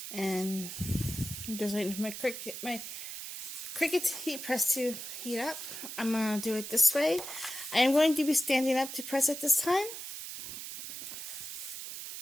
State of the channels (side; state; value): right; noise; hiss, 8 dB below the sound